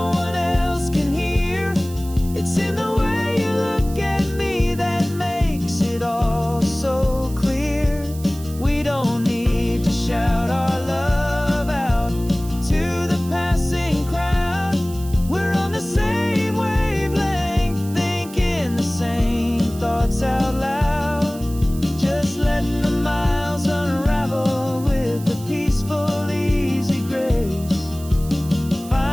one else can hear. It's in the way you look at me that makes it all so clear.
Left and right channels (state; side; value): noise; right; hiss, 18 dB below the sound